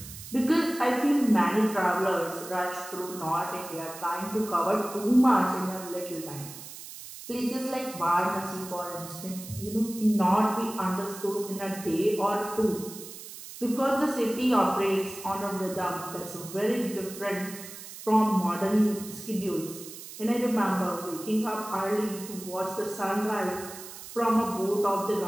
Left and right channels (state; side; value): noise; right; hiss, 13 dB below the sound